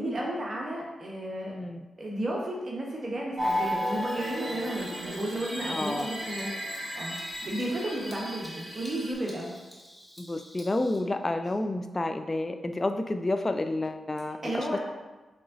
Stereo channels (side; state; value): both; normal; correlation 0.90